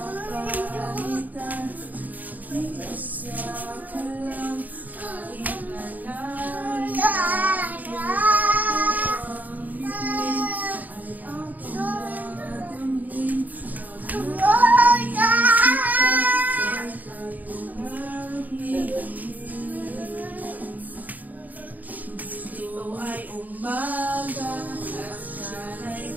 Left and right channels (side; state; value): left; late; 0.081 ms